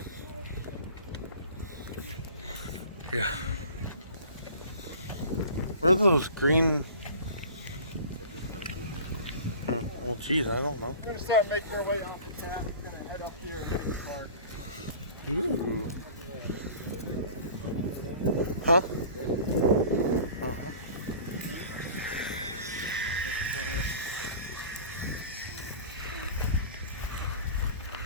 Yeah. What are those green? Well, geez, I don't know. We're gonna start making our way off the tap. We're gonna head up here and get the park. Ooh. Huh?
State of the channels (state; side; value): inverted; both; correlation -0.41